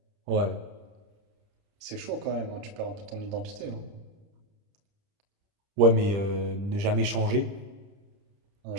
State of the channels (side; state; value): left; late; 30 ms